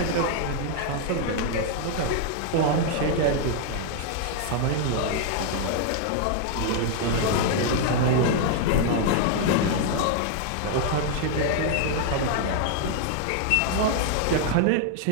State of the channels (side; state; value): both; different; correlation 0.00